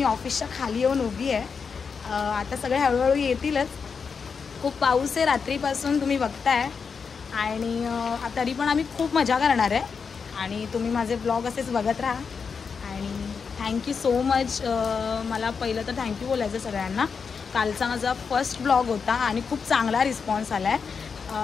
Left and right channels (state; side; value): quieter; right; 5.7 dB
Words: ऑफिसच्या खाली येऊन उभी आहे. आता सगळे हळूहळू येतीलच. खूप पाऊस आहे रात्रीपासून, तुम्ही बघताय. आणि तरी पण आम्ही खूप मजा करणार आहे. आणि तुम्ही माझे ब्लॉग असेच बघत राहा. आणि थँक्यू सो मच. मला पहिलं तर थँक्यू बोलायचं सगळ्यांना. कालचा माझा फर्स्ट ब्लॉग होता आणि खूप चांगला रिस्पॉन्स आला आहे.